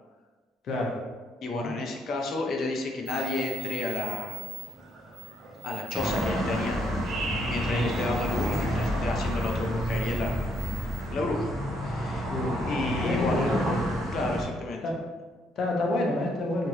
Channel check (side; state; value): both; normal; correlation 0.73